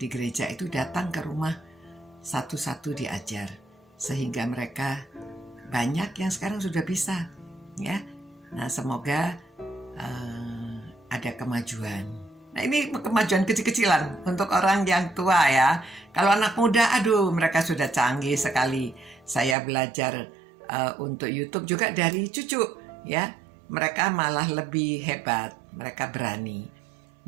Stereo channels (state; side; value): drops out; left; at 19.6 s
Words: gereja itu datang ke rumah satu-satu diajar, sehingga mereka banyak yang sekarang sudah bisa, ya. Nah, semoga ada kemajuan. Nah, ini kemajuan kecil-kecilan untuk orang yang tua ya. Kalau anak muda, aduh, mereka sudah canggih sekali. Saya belajar untuk YouTube juga dari cucu, ya. Mereka malah lebih hebat, mereka berani.